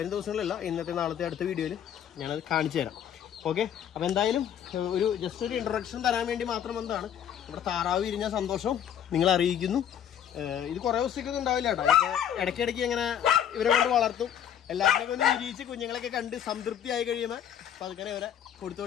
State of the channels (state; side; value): quieter; right; 9.5 dB